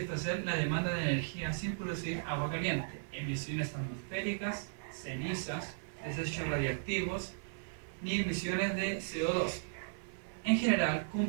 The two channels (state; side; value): silent; left; 54 dB below the other